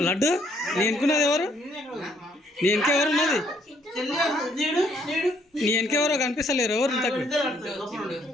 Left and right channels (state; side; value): normal; both; correlation 0.67